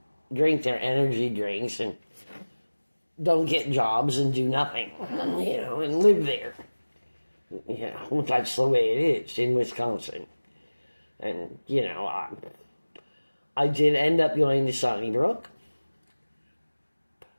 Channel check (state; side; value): inverted; both; correlation -1.00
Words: drink their energy drinks and don't get jobs and do nothing, and live there. That's the way it is in Wisconsin. And, I did end up going to Sunnybrook,